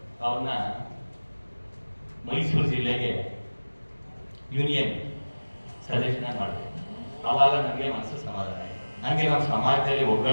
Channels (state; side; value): inverted; both; correlation -1.00